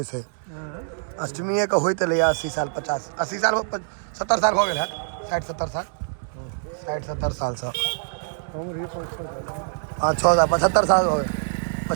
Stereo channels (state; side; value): silent; left; 62 dB below the other